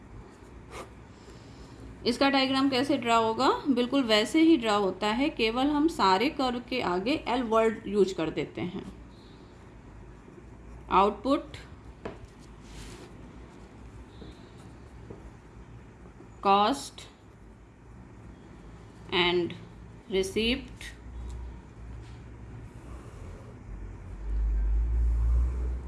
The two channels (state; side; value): identical; both; correlation 1.00